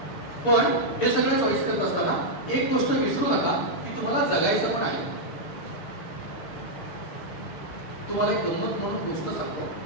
पण हे सगळे चॉईस करत असताना एक गोष्ट विसरू नका की तुम्हाला जगायचं पण आहे. तुम्हाला एक गंमत म्हणून गोष्ट सांगतो.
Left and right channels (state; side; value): late; right; 6.9 ms